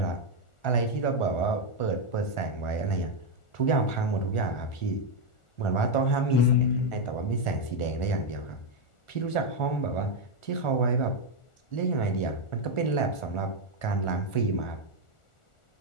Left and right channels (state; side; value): late; right; 1.4 ms